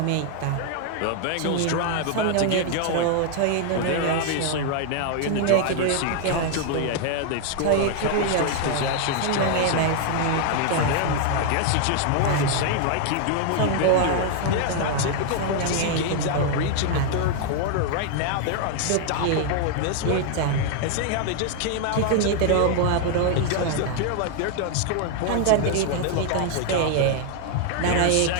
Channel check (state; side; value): different; both; correlation 0.00